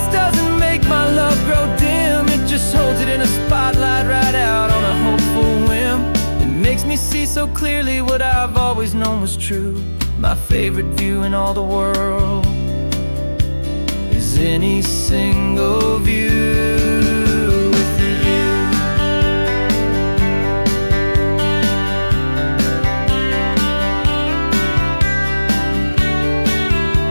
doesn't make my love grow dim. It just holds it in a spotlight right out on a hopeful whim. It makes me see so clearly what I've always known was true. My favorite view in all the world is any single view with you.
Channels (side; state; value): both; inverted; correlation -1.00